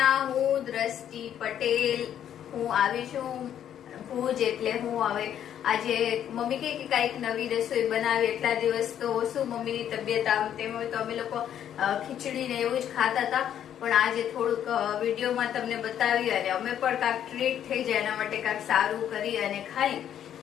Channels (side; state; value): right; quieter; 10.0 dB